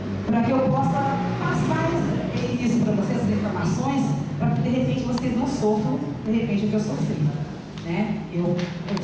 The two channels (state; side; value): identical; both; correlation 1.00